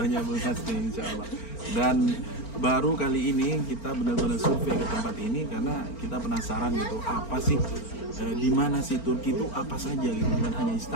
Bu Hasni insyaallah. Dan baru kali ini kita benar-benar survei ke tempat ini karena kita penasaran gitu apa sih di mana sih Turki itu apa saja gitu, bukan hanya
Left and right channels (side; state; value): right; late; 4.4 ms